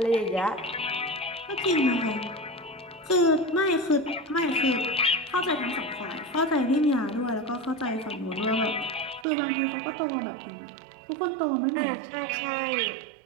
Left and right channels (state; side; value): drops out; left; at 9.2 s